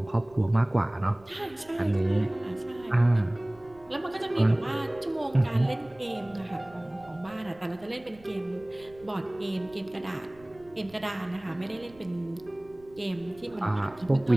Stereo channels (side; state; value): right; noise; rumble, 26 dB below the sound